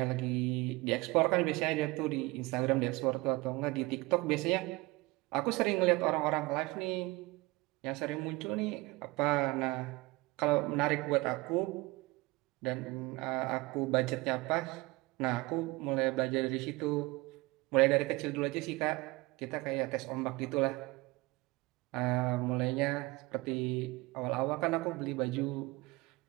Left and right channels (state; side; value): quieter; left; 22.7 dB